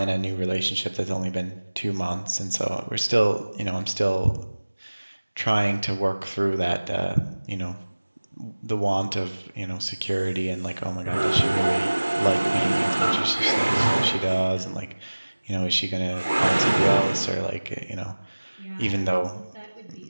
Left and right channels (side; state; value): both; inverted; correlation -1.00